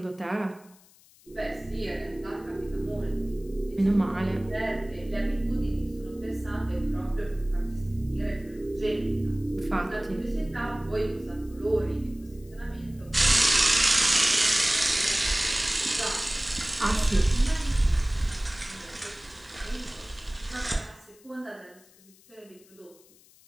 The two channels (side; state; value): left; noise; hiss, 27 dB below the sound